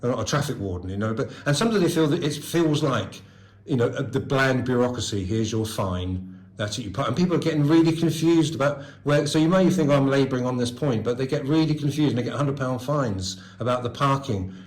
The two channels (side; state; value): both; identical; correlation 1.00